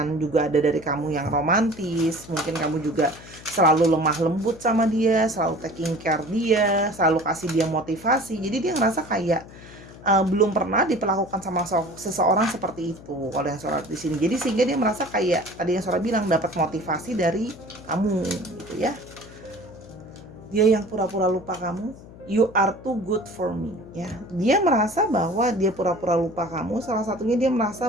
juga ada dari kamu yang romantis. Mungkin kamu juga selalu lemah lembut sama dia, selalu taking care dia, selalu kasih dia motivasi. Jadi dia ngerasa kayak belum pernah diperlakukan sama seseorang seperti itu kalau yang Sora di sini. Jadi sehingga dia merasa kayak tadi yang Sora bilang, dapat motivasi dari kamu gitu ya. Dia yang pura-pura lupa kamu, you are too good for me ya. Dia merasa bahwa dia pura-pura lupa kamu, salah satunya dia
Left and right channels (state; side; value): noise; left; hum, 19 dB below the sound